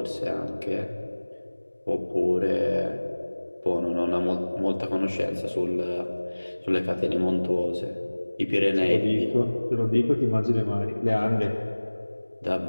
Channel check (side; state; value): both; inverted; correlation -1.00